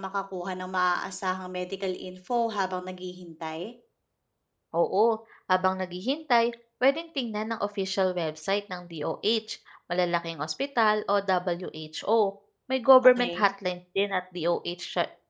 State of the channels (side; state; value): both; identical; correlation 1.00